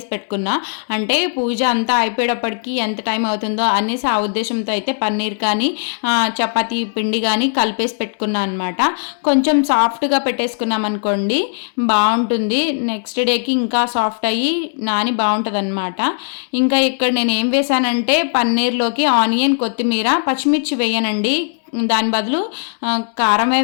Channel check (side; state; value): right; silent; digital silence